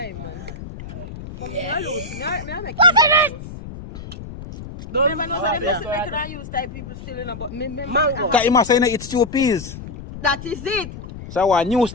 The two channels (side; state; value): left; noise; rumble, 12 dB below the sound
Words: man. But me not use. Me I make you use. Don't ever know say this make I use type people still in about me Mango. Cause you must say it's two peas. That is it. So a new